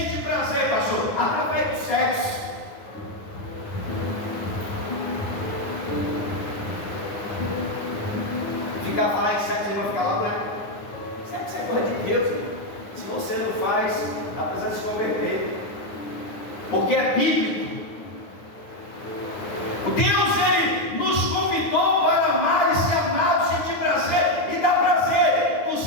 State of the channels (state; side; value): late; right; 9.8 ms